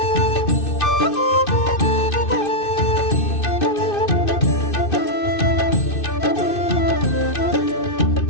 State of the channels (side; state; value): right; late; 2.6 ms